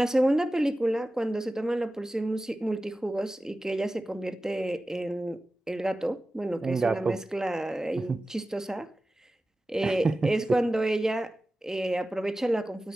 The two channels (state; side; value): normal; both; correlation 0.95